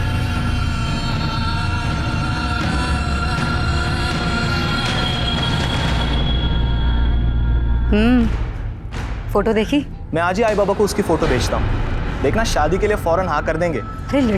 फोटो देखी? मैं आज ही आई बाबा को उसकी फोटो भेजता हूँ। देखना, शादी के लिए फौरन हाँ कर देंगे। अरे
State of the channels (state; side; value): identical; both; correlation 1.00